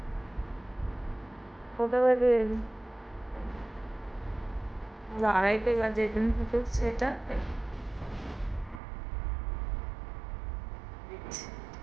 কটা বাজে? 2:30 বাজে। তুমি কি করছো এটা?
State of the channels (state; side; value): drops out; left; at 8.8 s